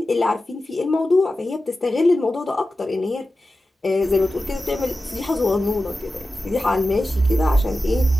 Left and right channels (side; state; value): both; normal; correlation 0.93